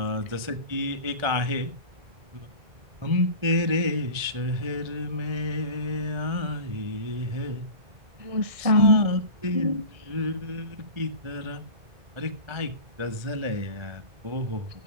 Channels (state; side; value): late; left; 1.4 ms